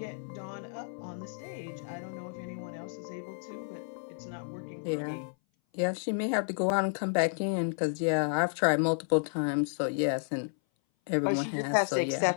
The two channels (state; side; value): silent; right; 57 dB below the other